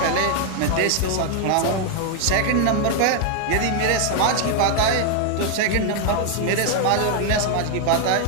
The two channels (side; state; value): both; different; correlation 0.00